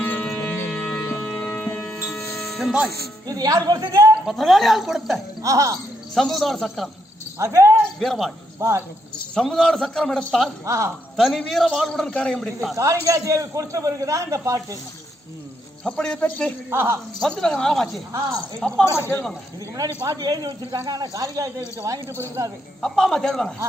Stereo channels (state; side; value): normal; both; correlation 0.77